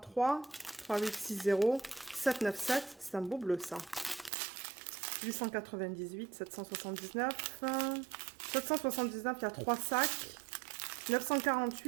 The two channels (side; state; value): left; drops out; at 4.3 s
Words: 3-8-6-0, 7-9-7. C'est un beau bleu ça. 898, 779, 779, il y a 3 sacs.